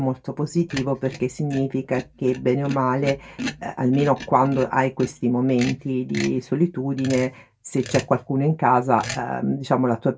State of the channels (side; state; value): both; identical; correlation 1.00